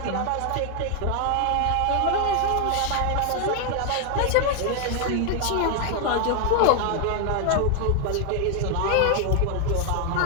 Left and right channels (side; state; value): both; different; correlation 0.00